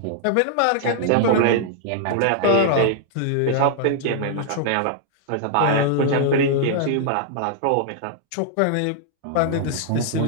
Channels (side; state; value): both; different; correlation -0.01